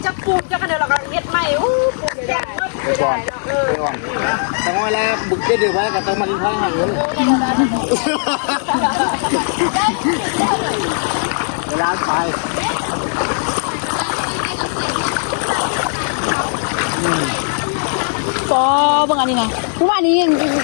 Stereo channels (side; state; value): right; silent; digital silence